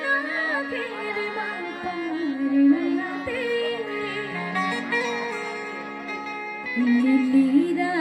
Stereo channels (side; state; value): both; identical; correlation 1.00